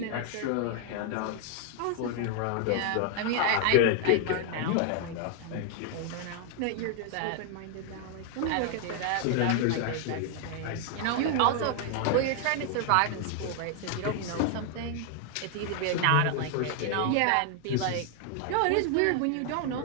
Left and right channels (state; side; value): different; both; correlation 0.00